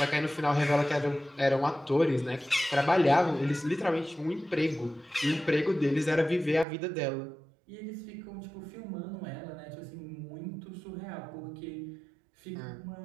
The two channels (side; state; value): left; drops out; at 6.7 s